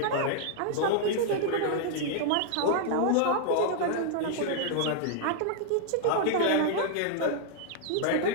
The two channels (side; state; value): both; different; correlation -0.01